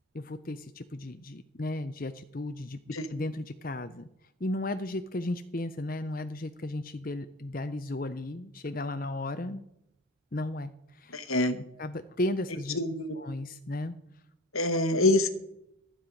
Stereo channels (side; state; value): both; normal; correlation 0.36